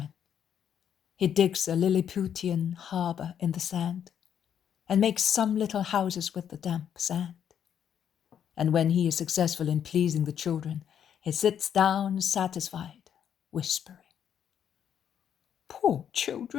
He digs a Lilliputian harbour in the sand and makes some little houses with the damp sand. And when he is successful in pleasing the children, he sits down satisfied, whispering, "Poor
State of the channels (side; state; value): right; quieter; 8.9 dB